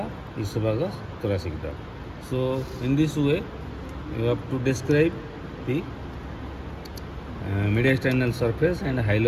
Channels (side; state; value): both; identical; correlation 1.00